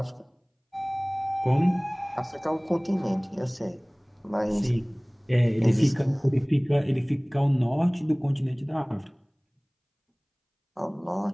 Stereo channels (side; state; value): both; identical; correlation 1.00